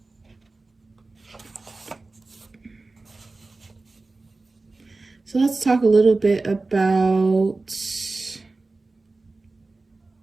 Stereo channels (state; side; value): quieter; left; 3.4 dB